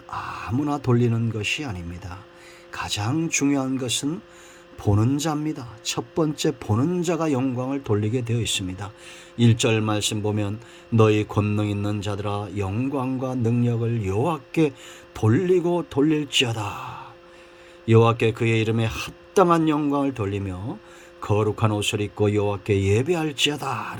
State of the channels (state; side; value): identical; both; correlation 1.00